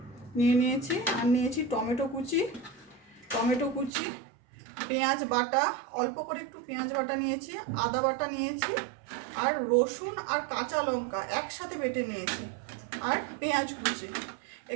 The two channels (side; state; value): left; drops out; at 3.9 s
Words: নিয়েছি। আর নিয়েছি টমেটো কুচি, পেঁয়াজ বাটা, অল্প করে একটু পেঁয়াজ বাটা নিয়েছি, আদা বাটা নিয়েছি, আর রসুন আর কাঁচা লঙ্কা একসাথে বেটে নিয়েছি, আর পেঁয়াজ কুচি।